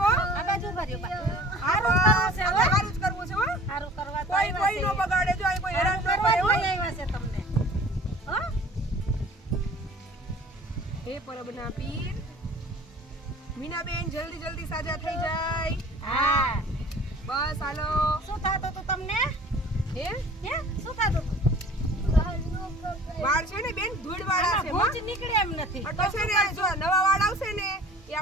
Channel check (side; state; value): both; normal; correlation 0.47